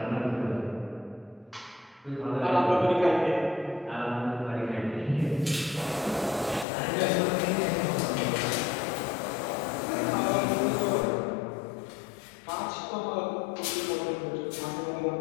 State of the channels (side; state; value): right; drops out; at 6.7 s